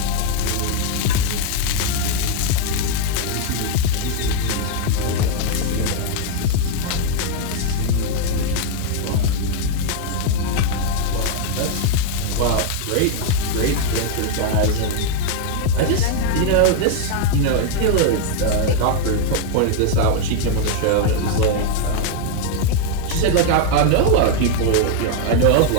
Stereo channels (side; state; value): both; different; correlation 0.00